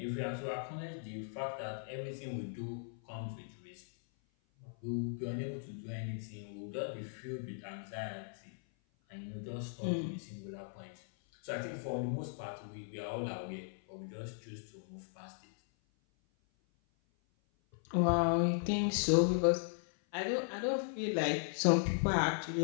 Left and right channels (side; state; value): right; silent; 53 dB below the other